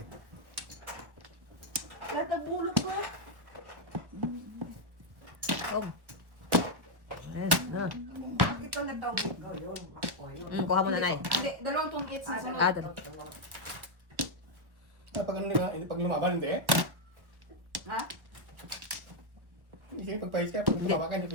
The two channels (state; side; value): late; left; 1.4 ms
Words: Lahat ang bulot ko. Oh. Yes, na. Ito na daw ko yun. Ako yun. Kuha mo na, Nay. Hindi, dalawang tungkit sa sunod. Ah, dalawa. Pag ano nila, pag lumaban, hindi. Ha? Hindi, pag pahis ka, pag lumaban ka, hindi